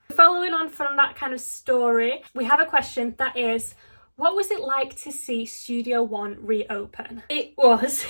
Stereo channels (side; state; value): both; inverted; correlation -1.00